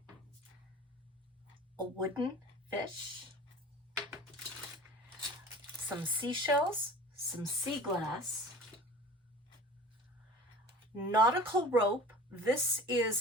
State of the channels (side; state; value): both; normal; correlation 0.41